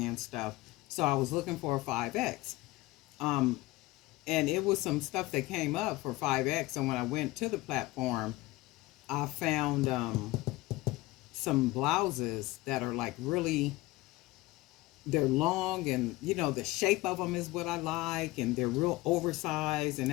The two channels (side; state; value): right; quieter; 19.6 dB